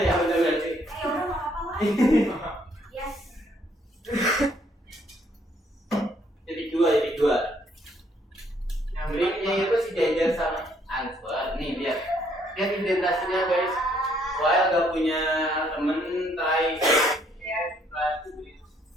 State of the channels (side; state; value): both; normal; correlation 0.67